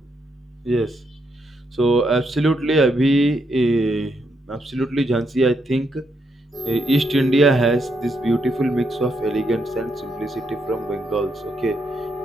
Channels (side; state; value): both; normal; correlation 0.79